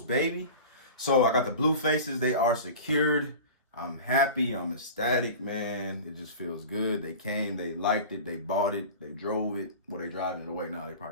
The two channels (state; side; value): inverted; both; correlation -0.35